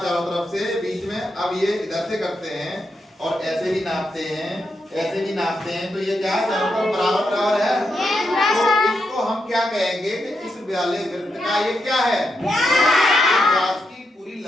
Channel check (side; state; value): both; normal; correlation 0.84